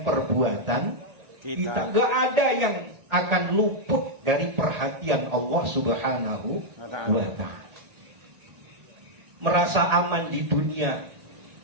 perbuatan kita. Gak ada yang akan luput dari perhatian Allah Subhanahu wa ta'ala. Merasa aman di dunia,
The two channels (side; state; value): left; late; 1.8 ms